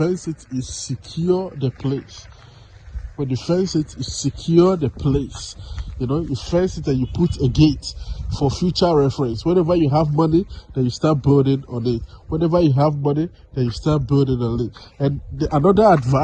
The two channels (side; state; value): both; identical; correlation 1.00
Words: it, you secure the place. When you fence it, you secure the place. You know, you fence it and you put a gate for future reference. Whenever you have money, then you start building on it. And another